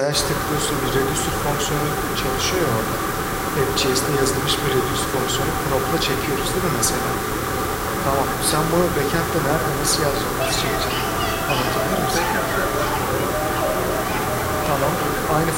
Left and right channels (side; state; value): both; identical; correlation 1.00